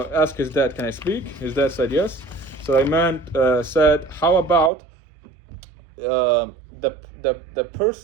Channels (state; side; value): drops out; left; at 4.7 s